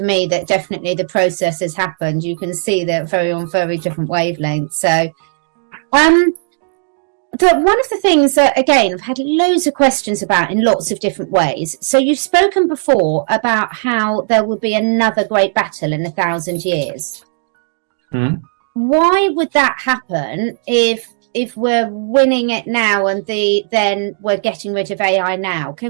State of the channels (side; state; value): left; silent; digital silence